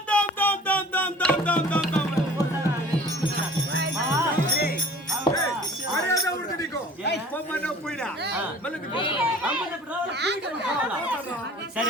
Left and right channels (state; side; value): normal; both; correlation 0.47